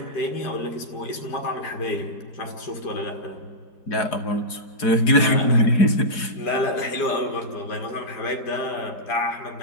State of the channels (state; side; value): late; right; 4.8 ms